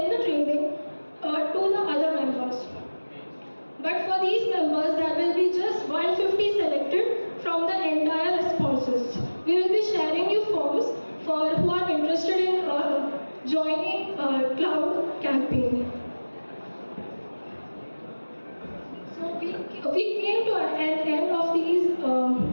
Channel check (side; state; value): both; inverted; correlation -1.00